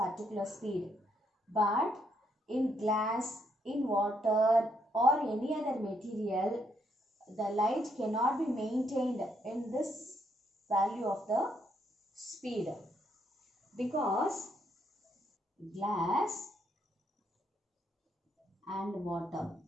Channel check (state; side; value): normal; both; correlation 0.74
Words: speed. But in glass, in water or any other material, the light cannot be maintained in this value of the speed, because glass and water,